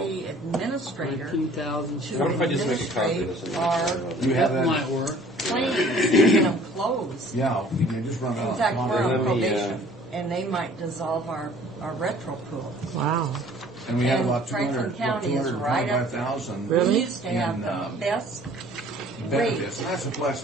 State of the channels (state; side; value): normal; both; correlation 0.52